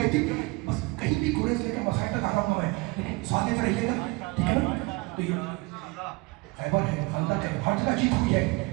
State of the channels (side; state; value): left; quieter; 25.8 dB